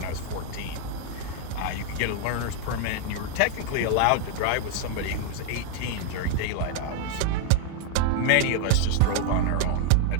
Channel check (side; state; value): both; different; correlation 0.00